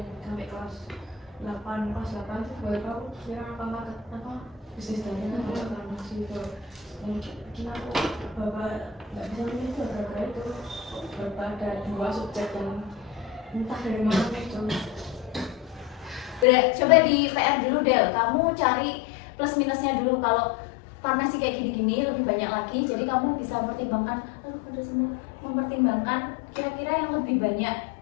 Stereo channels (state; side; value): drops out; right; at 16.4 s